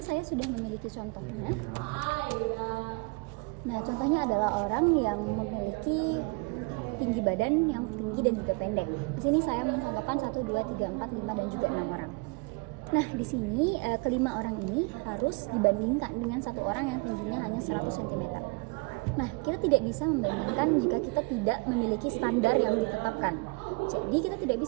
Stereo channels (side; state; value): left; quieter; 29.7 dB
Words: saya sudah memiliki contohnya. Nah, contohnya adalah orang yang memiliki tinggi badan yang tinggi dan juga pendek. Di sini saya mencontohkan 1, 2, 3, 4, 5 dan juga 6 orang. Nah, di sini kelima orang ini harus dibandingkan dengan satu orang yang tingginya hanya 100 cm. Nah, kita tidak bisa membandingkan jika kita tidak memiliki standar yang ditetapkan. Jadi kita tidak